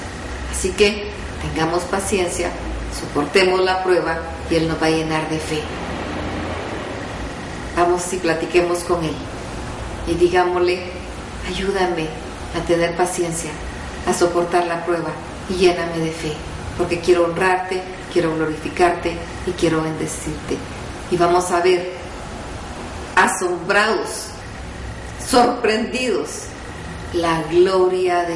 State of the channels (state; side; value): identical; both; correlation 1.00